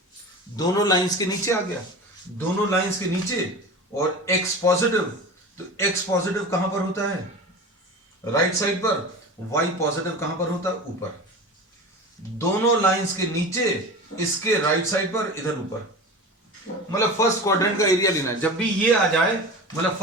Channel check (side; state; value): both; normal; correlation 0.31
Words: दोनों लाइंस के नीचे आ गया. दोनों लाइंस के नीचे और x पॉजिटिव. तो x पॉजिटिव कहां पर होता है? राइट साइड पर. y पॉजिटिव कहां पर होता है? ऊपर. दोनों लाइंस के नीचे, इसके राइट साइड पर, इधर ऊपर. मतलब फर्स्ट क्वाड्रेंट का एरिया लेना है. जब भी ये आ जाए मतलब